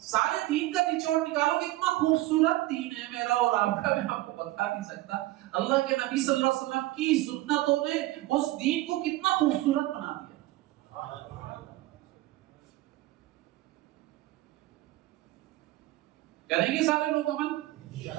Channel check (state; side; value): quieter; left; 17.5 dB